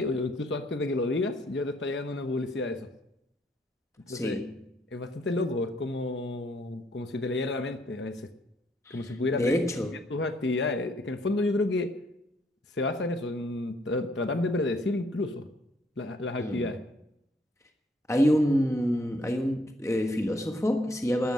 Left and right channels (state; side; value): normal; both; correlation 0.68